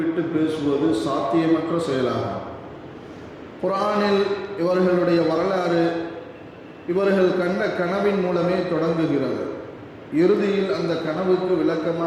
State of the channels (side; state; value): both; identical; correlation 1.00